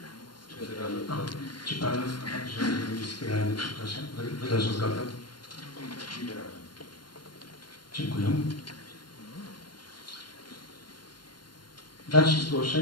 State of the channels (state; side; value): late; right; 0.71 ms